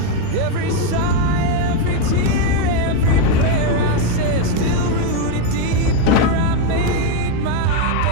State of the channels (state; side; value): different; both; correlation 0.02